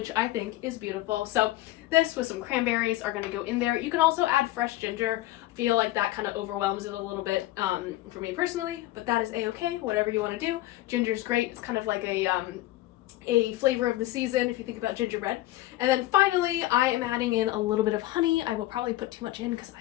I think is beautiful. So this with some cranberries are going to go in there. You can also add fresh ginger. I feel like that kind of overwhelms it a little bit for me personally, but that is a-okay, whatever you want to do. Ginger's great. It's kind of like a flavor of the season if you think about gingerbread. And then finally, I am adding in a little bit of honey. I will probably put too much in because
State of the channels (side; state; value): right; quieter; 16.5 dB